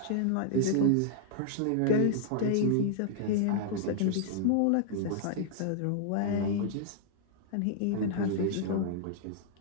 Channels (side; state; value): both; different; correlation -0.01